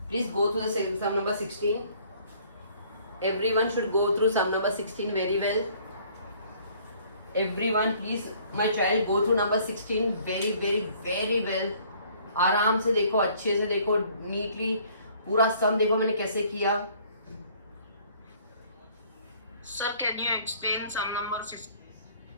Please go through the sum number 16। Everyone should go through sum number 16 very well. Everyone, please, my child, go through number 16 very very very well. आराम से देखो, अच्छे से देखो, नीटली पूरा सम देखो मैंने कैसे किया। Sir, can you explain sum number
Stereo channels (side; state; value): both; inverted; correlation -0.58